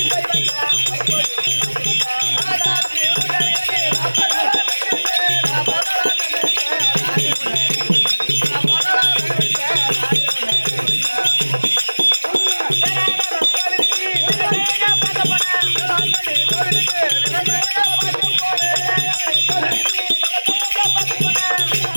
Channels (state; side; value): inverted; both; correlation -1.00